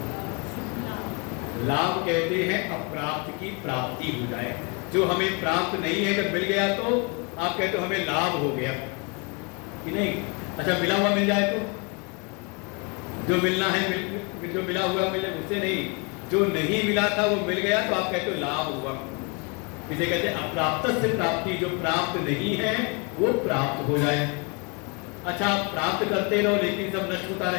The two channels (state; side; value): quieter; right; 31.4 dB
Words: लाभ कहते हैं अप्राप्त की प्राप्ति हो जाए, जो हमें प्राप्त नहीं है जब मिल गया तो आप कहते हो हमें लाभ हो गया कि नहीं। अच्छा मिला हुआ मिल जाए तो जो मिलना है जो मिला हुआ मिले उससे नहीं, जो नहीं मिला था वो मिल गया तो आप कहते हो लाभ हुआ। इसे कहते हैं अप्राप्त से प्राप्ति, जो प्राप्त नहीं है वो प्राप्त हो जाए। अच्छा आप प्राप्त करते रहो लेकिन सब नष्ट होता